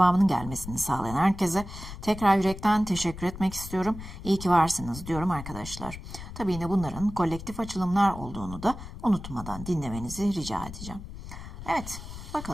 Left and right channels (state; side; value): noise; left; rumble, 11 dB below the sound